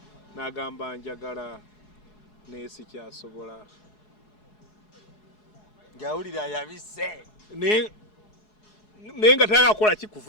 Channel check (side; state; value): right; late; 4.7 ms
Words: n'agamba njagala naye sikyasobola ng'awulira yabise naye nga tagakola ki